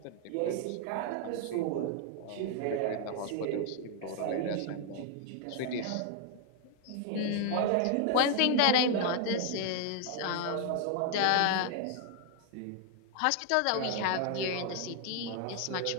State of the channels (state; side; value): different; both; correlation 0.00